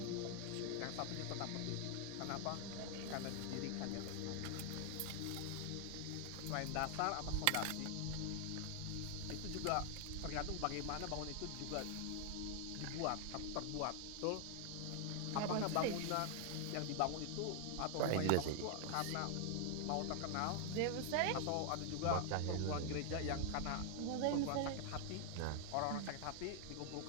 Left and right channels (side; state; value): both; different; correlation 0.00